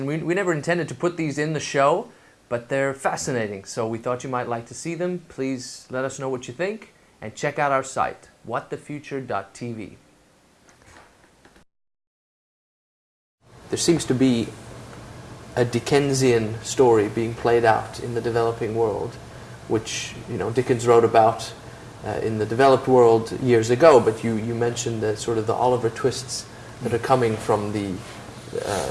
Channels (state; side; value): identical; both; correlation 1.00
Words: we never intended to put these in the show, but they're fascinating, so we thought you might like to see them. Please let us know what you think, and check out our site, whatthefuture.tv. There seems to be a Dickensian story being played out in the developing world, which Dickens wrote about in the developed world years ago, but you mentioned the sort of the Oliver twists that are coming from the